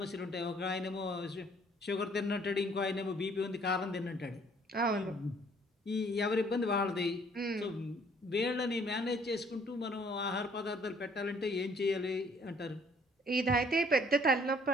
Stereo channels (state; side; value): normal; both; correlation 0.60